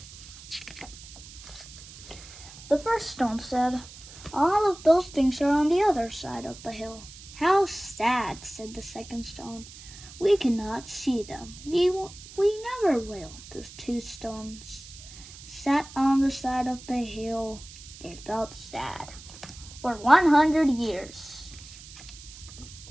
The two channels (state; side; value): noise; right; hiss, 17 dB below the sound